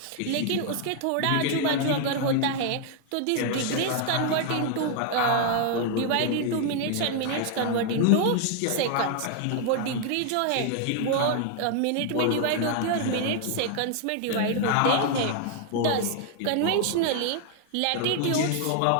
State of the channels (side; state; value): both; different; correlation 0.00